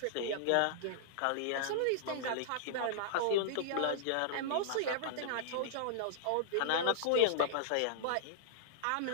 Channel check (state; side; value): different; both; correlation -0.01